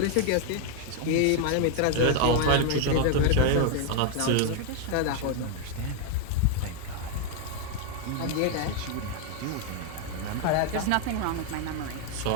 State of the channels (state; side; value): different; both; correlation 0.01